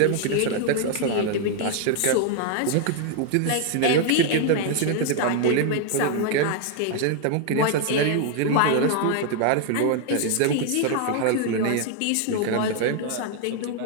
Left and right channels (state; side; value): different; both; correlation 0.00